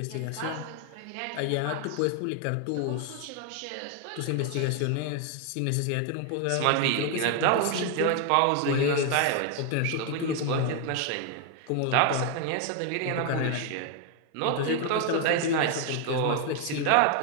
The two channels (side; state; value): both; different; correlation 0.01